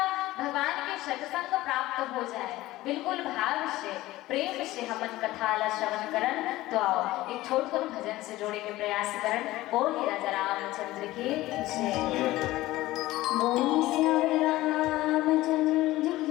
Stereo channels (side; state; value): right; quieter; 17.3 dB